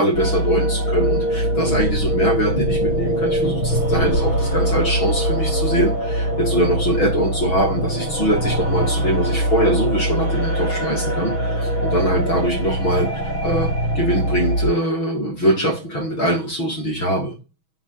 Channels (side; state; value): right; late; 6.2 ms